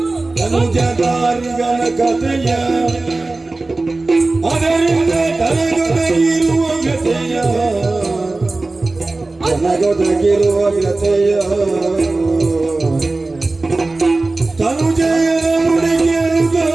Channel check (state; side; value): quieter; left; 3.3 dB